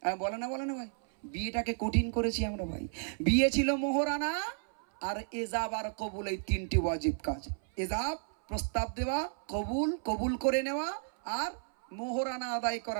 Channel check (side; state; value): left; silent; 56 dB below the other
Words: বলে না, বলে না ভাই, বিয়েটাকে কঠিন করেছি আমরা ভাই। বিয়ে ছিল মোহরানা আর এজাব আর কবুল, এই 3টি ওয়াজিব কাজ। এজাব প্রস্তাব দেওয়া, কবুল কবুল করে নেওয়া, আর মোহরানা আদায়